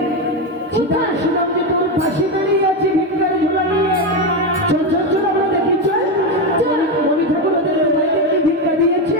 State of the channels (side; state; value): both; normal; correlation 0.12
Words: চিতা কোথায়? শুনলাম যে তোর পাশে দাঁড়িয়ে আছে ভিক্ষার ঝোলা নিয়ে। চল চল চল আমরা দেখি চল। চল। মনি ঠাকুর ওদের ভাইকে ভিক্ষা দিয়েছে।